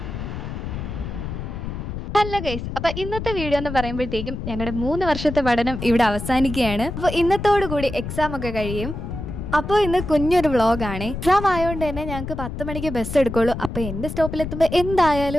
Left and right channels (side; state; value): left; noise; rumble, 7 dB below the sound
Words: guys, അപ്പൊ ഇന്നത്തെ video എന്ന് പറയുമ്പോഴത്തേക്കും ഞങ്ങളുടെ 3 വർഷത്തെ പഠനം ഇവിടെ അവസാനിക്കുകയാണ്. അപ്പൊ ഇന്നത്തോടു കൂടി എക്സാം ഒക്കെ കഴിയും. അപ്പോൾ ഇന്ന് കുഞ്ഞൊരു വ്ളോഗാണ്. എക്സാം ആയതുകൊണ്ട് തന്നെ ഞങ്ങൾക്ക് 10 മണിക്ക് ബസ് എടുക്കുള്ളൂ. അപ്പോൾ എൻ്റെ സ്റ്റോപ്പിലെത്തുമ്പോൾ